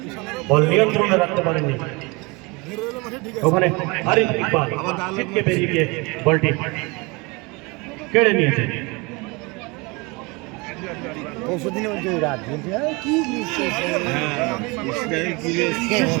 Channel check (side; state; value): left; quieter; 26.9 dB